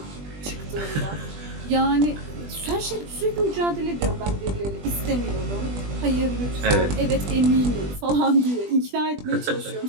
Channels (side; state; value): left; late; 20 ms